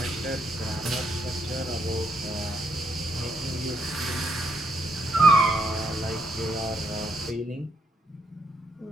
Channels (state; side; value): normal; both; correlation 0.77